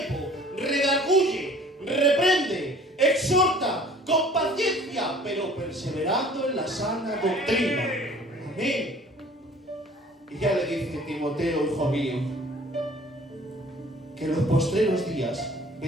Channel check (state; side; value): normal; both; correlation 0.51